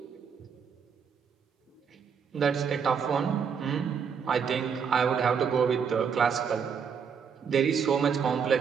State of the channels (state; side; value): quieter; left; 6.7 dB